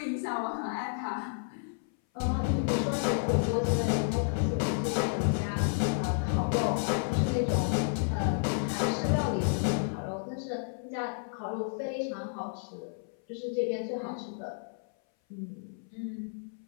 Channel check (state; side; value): silent; right; 57 dB below the other